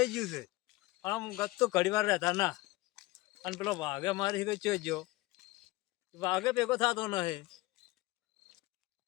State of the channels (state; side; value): quieter; right; 20.0 dB